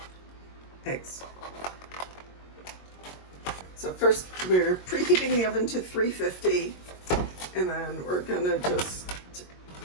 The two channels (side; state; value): right; late; 22 ms